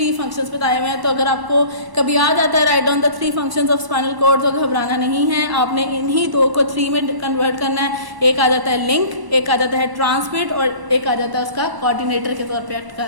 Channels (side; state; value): left; late; 1.1 ms